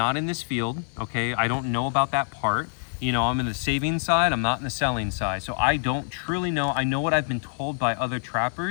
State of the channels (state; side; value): silent; right; 61 dB below the other